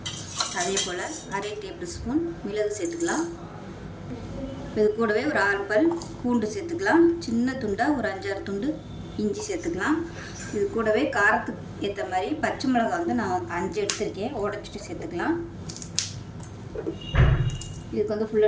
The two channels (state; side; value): identical; both; correlation 1.00